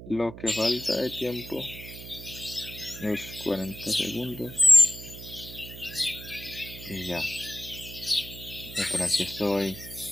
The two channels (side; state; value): right; noise; hum, 13 dB below the sound